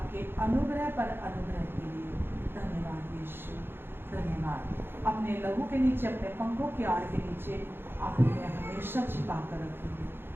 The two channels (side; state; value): left; late; 0.10 ms